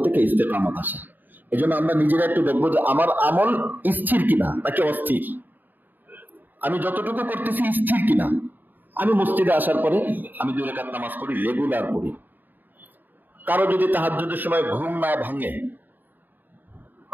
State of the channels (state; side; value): late; left; 0.089 ms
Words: থেকে ইস্তেকামত আসে। এই জন্য আমরা নিজেরা একটু দেখবো যে আমার আমল স্থির কিনা নাকি অস্থির, আমি যতটুকু করতেছি স্থির কিনা। আমি মসজিদে আসার পরে আমি 2 রাকাত নামাজ পড়ি, রেগুলার পড়ি। কারো যদি তাহাজ্জুদের সময় ঘুম না ভাঙে,